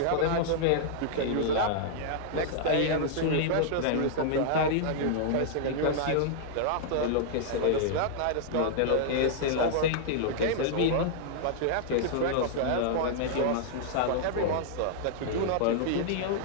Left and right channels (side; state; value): both; different; correlation -0.01